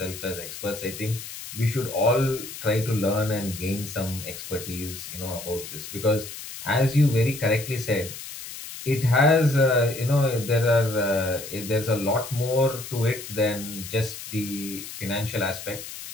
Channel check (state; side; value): noise; left; hiss, 11 dB below the sound